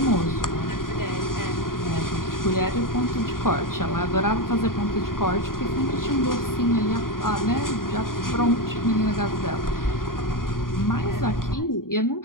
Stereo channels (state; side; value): late; right; 0.91 ms